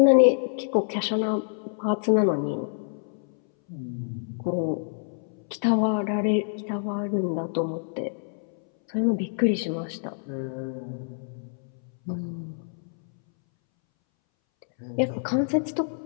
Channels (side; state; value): right; silent; 60 dB below the other